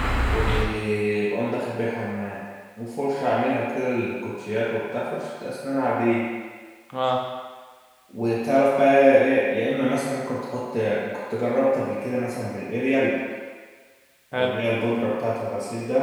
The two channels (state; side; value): identical; both; correlation 1.00